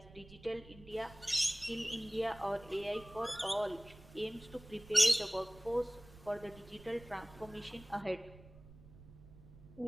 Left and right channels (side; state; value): right; noise; rumble, 20 dB below the sound